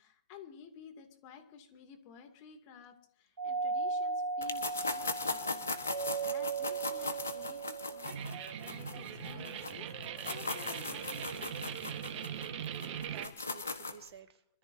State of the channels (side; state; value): both; inverted; correlation -0.37